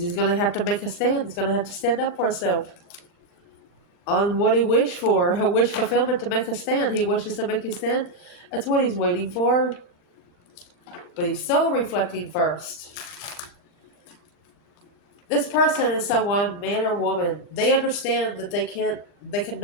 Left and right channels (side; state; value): right; late; 39 ms